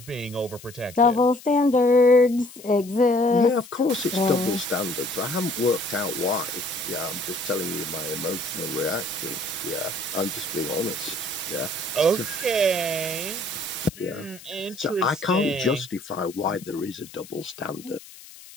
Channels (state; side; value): noise; left; hiss, 19 dB below the sound